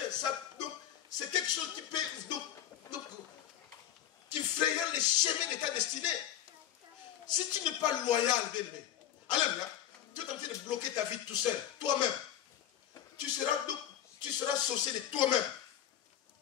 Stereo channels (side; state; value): right; quieter; 11.1 dB